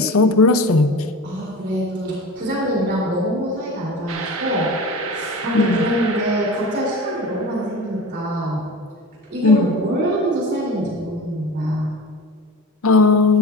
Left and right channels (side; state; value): both; normal; correlation 0.33